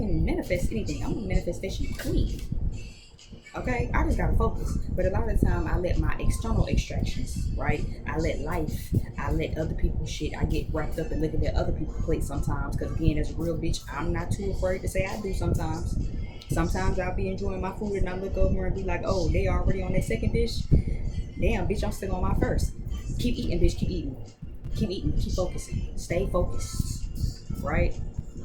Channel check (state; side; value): identical; both; correlation 1.00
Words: manifest anything. I'm a manifestation queen. Okay, I just gotta focus. But a lot of the time, I let my external extractions, right? I let life, I let other people's shit. I get wrapped up in looking at other people's plates sometimes. Because again, as a real bitch, I'm not too afraid to say I do sometimes. Sometimes I'll be enjoying my food and I look over and be like, oh, they already on their second dish. Damn, bitch, I'm still on my first. Keep eating, bitch, keep eating. Keep eating, keep focusing. Stay focused, right?